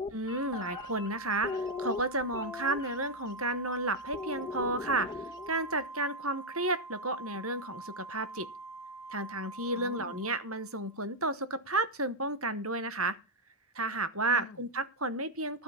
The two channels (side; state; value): both; normal; correlation 0.00